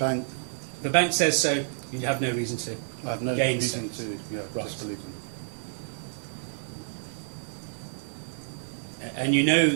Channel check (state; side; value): silent; left; 59 dB below the other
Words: The bank says so, you have no reason to. I have no Gainsay. reason to Right. disbelieve them. And you know